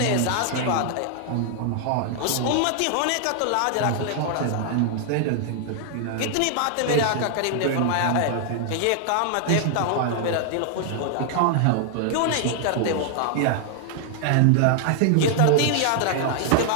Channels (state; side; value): different; both; correlation 0.00